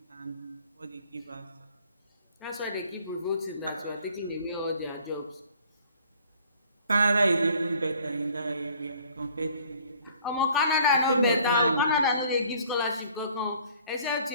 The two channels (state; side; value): inverted; both; correlation -0.55